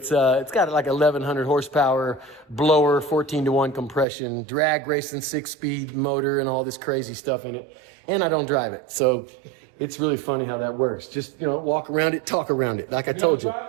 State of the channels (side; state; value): left; drops out; at 4.0 s